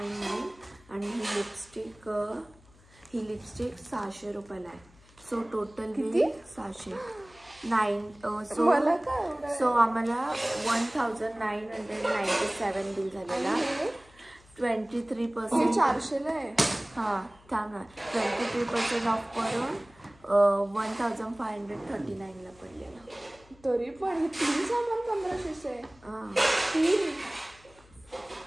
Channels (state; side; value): noise; left; hum, 27 dB below the sound